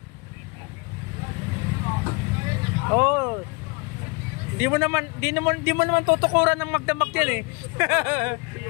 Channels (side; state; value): right; quieter; 29.9 dB